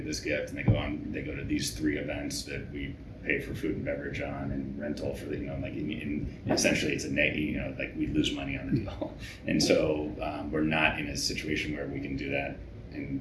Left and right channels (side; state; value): both; identical; correlation 1.00